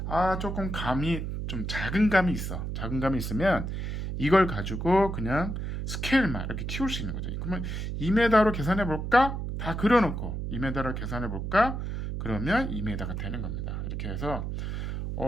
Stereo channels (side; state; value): right; noise; hum, 4 dB below the sound